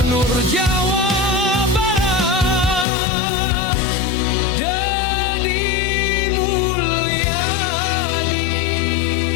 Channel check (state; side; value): drops out; right; at 2.9 s